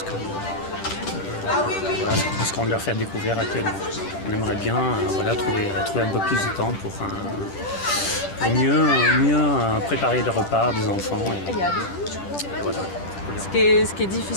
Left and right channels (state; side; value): late; right; 10 ms